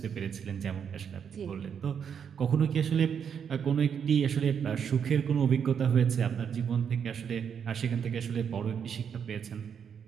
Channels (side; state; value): left; quieter; 7.5 dB